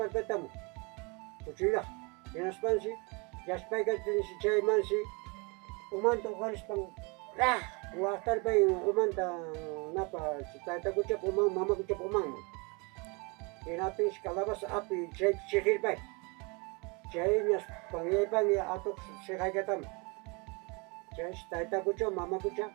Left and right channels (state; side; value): quieter; left; 30.2 dB